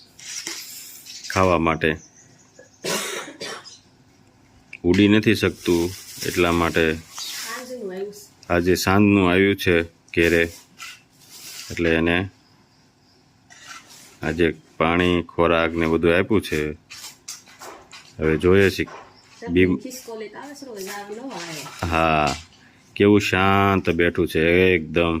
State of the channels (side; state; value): both; identical; correlation 1.00